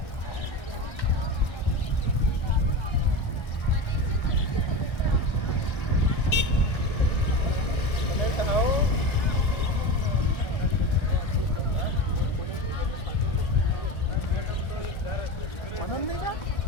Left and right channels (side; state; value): right; late; 1.3 ms